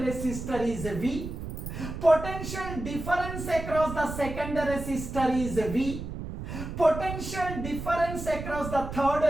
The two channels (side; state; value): right; noise; rumble, 7 dB below the sound